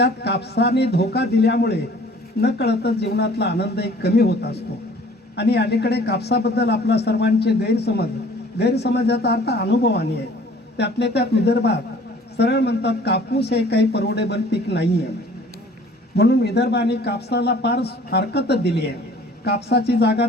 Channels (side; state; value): both; normal; correlation 0.52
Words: कापसाने धोका दिल्यामुळे न कळतच जीवनातला आनंद एक कमी होत असतो. आणि अलीकडे कापसाबद्दल आपला सर्वांचे गैरसमजाचा अर्थ अनुभवाने आहे. त्यातले त्यात विदर्भात सरळ म्हणतात कापूस हे काही परवडेबल पीक नाही आहे, म्हणून विदर्भाने कापसाला फार हरकत दिली आहे. कापसाची जागा